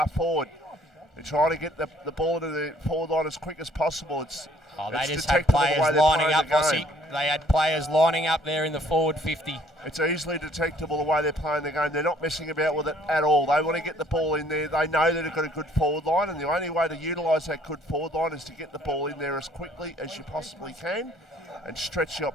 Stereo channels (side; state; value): both; normal; correlation 0.60